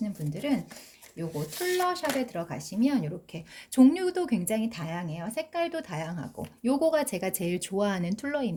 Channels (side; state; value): both; identical; correlation 1.00